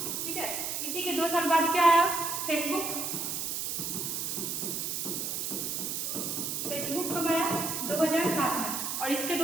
ठीक है। इसी के 2 साल बाद क्या आया, फेसबुक। फेसबुक कब आया, 2007 में। और इसके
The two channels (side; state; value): right; noise; hiss, 2 dB below the sound